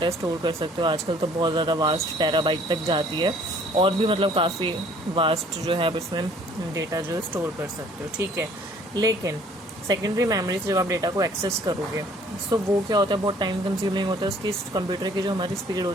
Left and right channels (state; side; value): normal; both; correlation 0.57